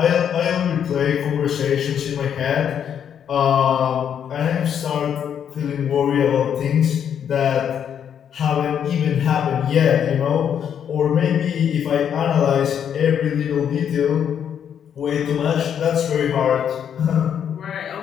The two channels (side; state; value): right; quieter; 8.6 dB